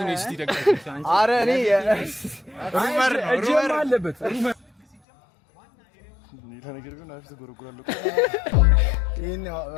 ነው እስቲ ደጋፊ አረ እኔ ሩመር አለበት ሩመር ሌላ ነገር ግን አፍተ ጎረጎራለሁ ይሄን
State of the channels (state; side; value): drops out; right; at 5.0 s